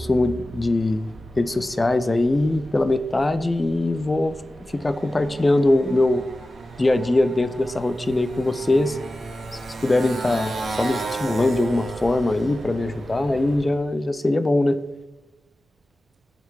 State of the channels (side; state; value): both; normal; correlation 0.95